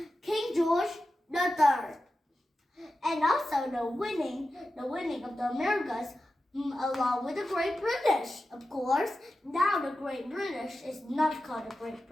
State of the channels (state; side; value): normal; both; correlation 0.92